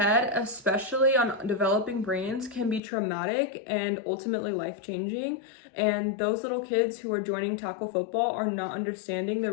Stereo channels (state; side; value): drops out; right; at 2.8 s